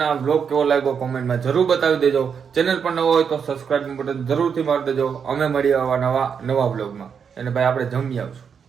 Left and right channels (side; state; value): left; quieter; 6.8 dB